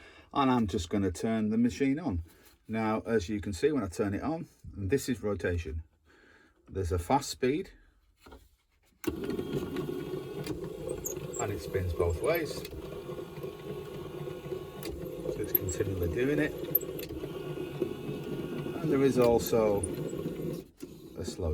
And I'm just going to turn the machine on. Now, as you can see when I turn it on, and this is rotation. There's a fast speed. And it spins both ways. So it's continually doing it. And there is also a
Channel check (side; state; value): both; identical; correlation 1.00